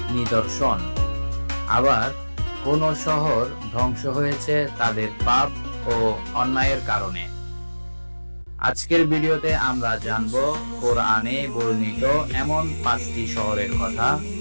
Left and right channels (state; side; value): inverted; both; correlation -1.00